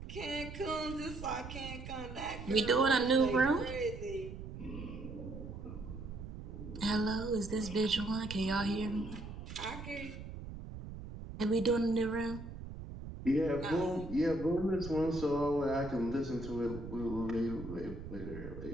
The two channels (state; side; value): noise; right; rumble, 10 dB below the sound